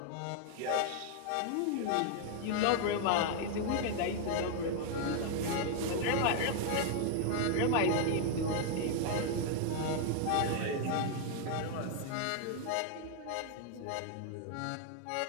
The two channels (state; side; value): different; both; correlation 0.00